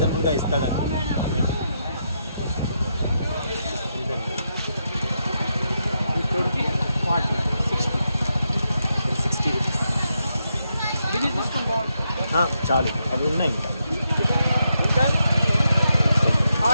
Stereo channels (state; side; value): inverted; both; correlation -0.83